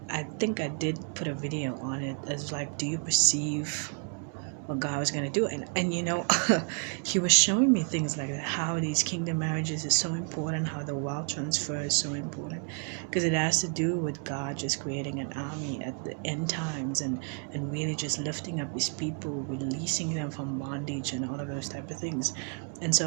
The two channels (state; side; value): quieter; left; 40.0 dB